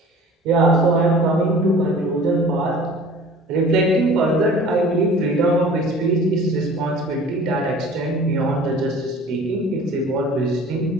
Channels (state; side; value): normal; both; correlation 0.45